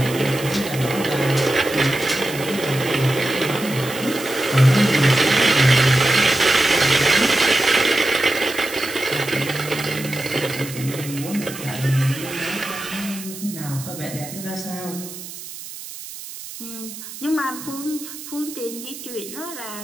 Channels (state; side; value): noise; right; hiss, 12 dB below the sound